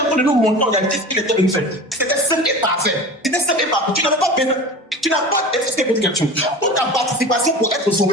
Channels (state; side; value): normal; both; correlation 0.34